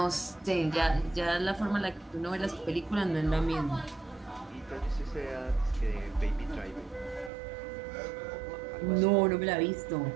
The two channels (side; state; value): left; drops out; at 7.3 s